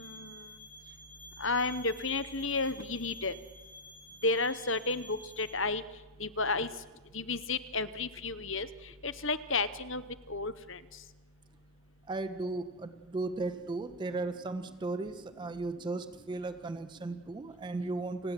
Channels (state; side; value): normal; both; correlation -0.01